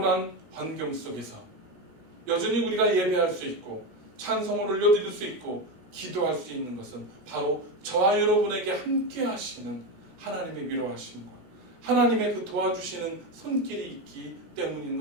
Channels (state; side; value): late; left; 16 ms